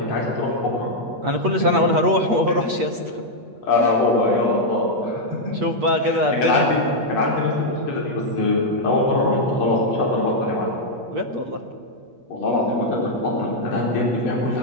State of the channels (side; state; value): left; late; 8.4 ms